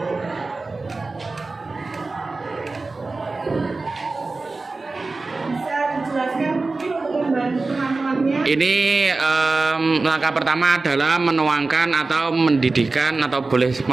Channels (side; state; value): left; quieter; 3.6 dB